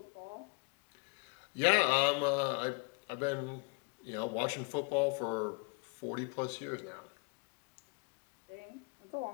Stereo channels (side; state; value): right; quieter; 32.6 dB